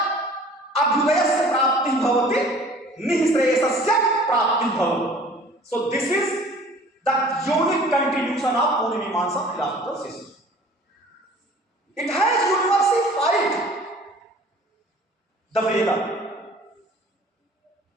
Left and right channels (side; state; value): both; normal; correlation 0.49